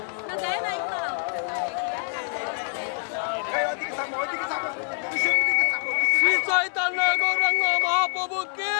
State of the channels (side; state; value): right; silent; 61 dB below the other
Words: না দেয় নাই না। শ্রী চৈতন্য গৌরাঙ্গ মহাপ্রভুকে,